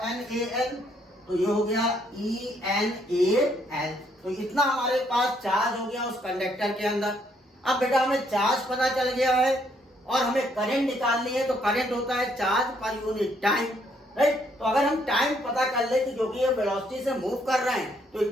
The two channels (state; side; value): normal; both; correlation 0.70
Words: NaL, तो ये हो गया ENaL। तो इतना हमारे पास चार्ज हो गया उस कंडक्टर के अंदर। अब बेटा हमें चार्ज पता चल गया है और हमें करंट निकालनी है, तो करंट होता है चार्ज पर यूनिट टाइम, राइट? तो अगर हम टाइम पता कर ले कि क्योंकि ये वेलोसिटी से मूव कर रहे हैं तो